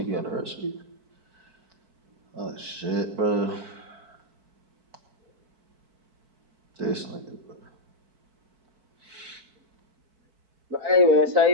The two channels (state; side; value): late; left; 4.5 ms